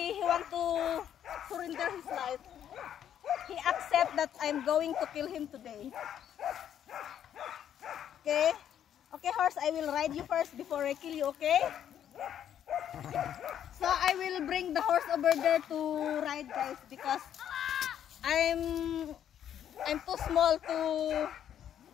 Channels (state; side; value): quieter; right; 9.9 dB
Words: he want to surrender his life. He accept that I'm going to kill him today. Okay? Okay, horse, I will ride you first before I kill you, okay? So I will bring the horse over there to ride, guys, because I'm too small to